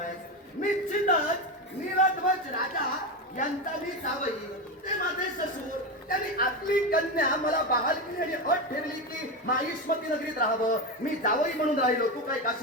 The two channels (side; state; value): both; normal; correlation 0.16